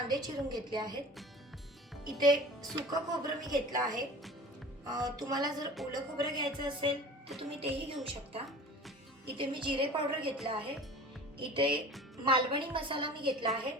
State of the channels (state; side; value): normal; both; correlation 0.39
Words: चिरून घेतले आहेत. इथे सुकं खोबरं मी घेतलं आहे. तुम्हाला जर ओलं खोबरं घ्यायचं असेल तर तुम्ही तेही घेऊ शकता. इथे मी जिरे पावडर घेतलं आहे. इथे मालवणी मसाला मी घेतला आहे.